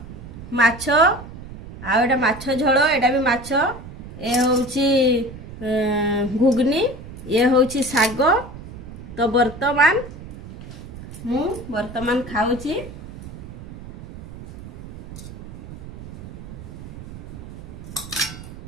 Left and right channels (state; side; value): noise; right; rumble, 13 dB below the sound